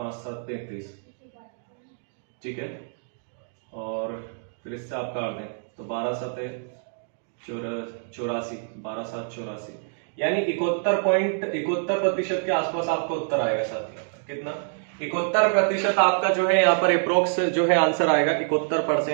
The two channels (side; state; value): left; silent; digital silence